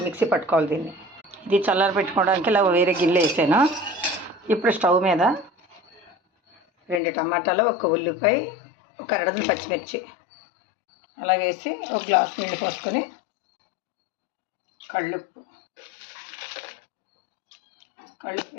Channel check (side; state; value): right; drops out; at 7.0 s